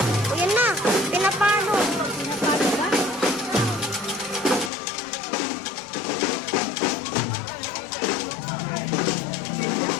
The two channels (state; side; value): drops out; right; at 4.7 s